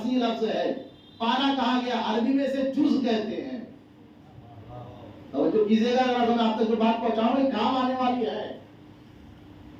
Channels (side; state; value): both; identical; correlation 1.00